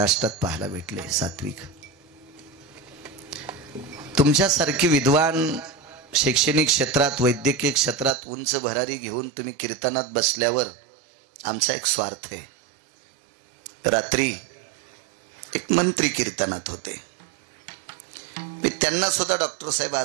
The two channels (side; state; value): left; drops out; at 8.2 s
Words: पाहायला भेटले, सात्विक. तुमच्यासारखी विद्वान शैक्षणिक क्षेत्रात, वैद्यकीय क्षेत्रात उंच भरारी घेऊन तुम्ही कीर्तनात बसल्यावर आमचा एक स्वार्थ आहे. रात्री एक मंत्री कीर्तनात होते. मी त्यांना सुद्धा डॉक्टर साहेब